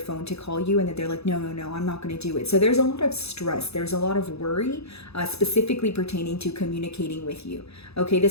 to call you and then they're like, no, I'm not going to do it. So there's a lot of stress. There's a lot of worry, specifically pertaining to communicating with you. Okay,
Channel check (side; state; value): right; late; 0.79 ms